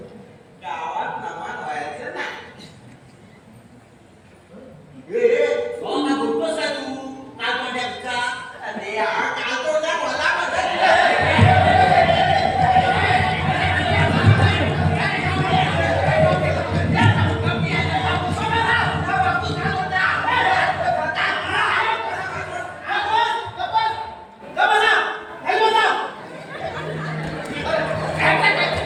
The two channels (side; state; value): both; identical; correlation 1.00